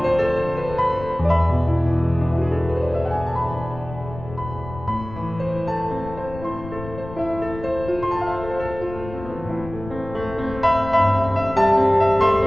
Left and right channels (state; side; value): noise; left; rumble, 13 dB below the sound